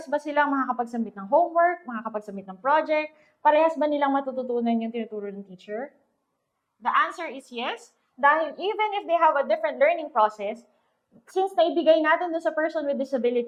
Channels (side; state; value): both; identical; correlation 1.00